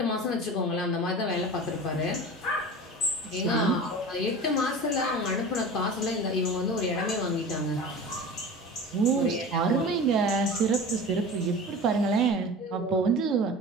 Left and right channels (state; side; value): normal; both; correlation 0.35